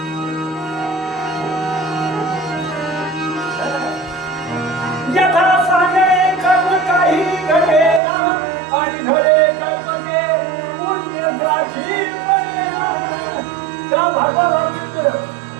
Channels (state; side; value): drops out; left; at 8.0 s